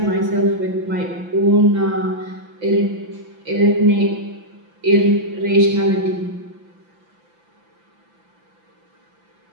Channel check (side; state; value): left; late; 5.9 ms